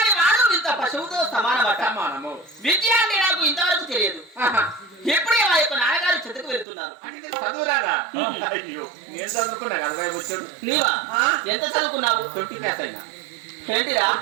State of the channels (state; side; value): drops out; left; at 6.7 s